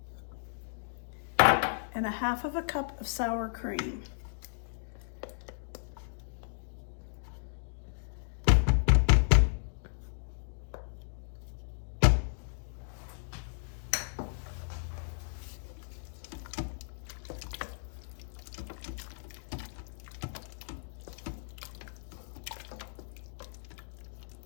and 1/2 cup of sour cream.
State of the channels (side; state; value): right; silent; digital silence